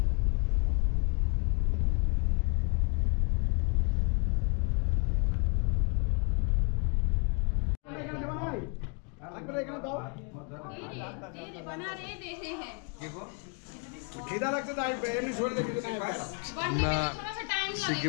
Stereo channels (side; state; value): right; quieter; 35.5 dB